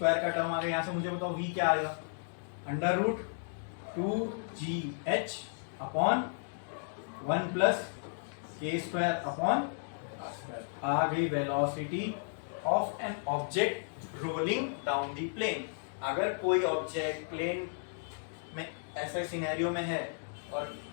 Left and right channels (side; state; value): right; silent; digital silence